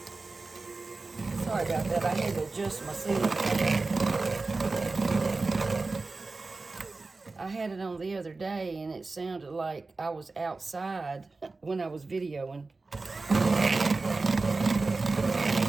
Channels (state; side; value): quieter; left; 3.7 dB